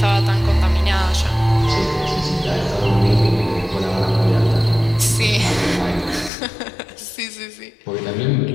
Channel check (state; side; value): drops out; right; at 6.3 s